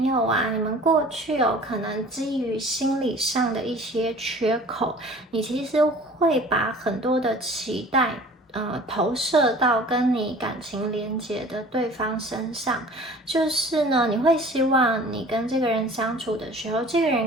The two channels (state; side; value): normal; both; correlation 0.46